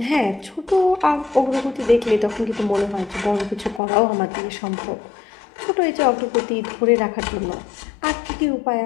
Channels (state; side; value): drops out; right; at 3.8 s